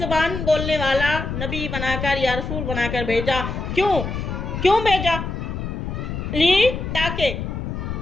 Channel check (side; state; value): left; noise; rumble, 4 dB below the sound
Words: बोलने वाला नबी बनाकर या रसूल बनाकर भेजा। क्यों भेजा? ली ताकि